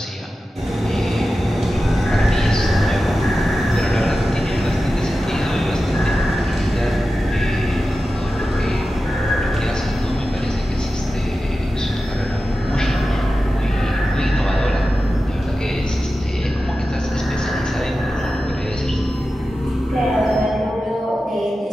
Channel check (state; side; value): normal; both; correlation 0.93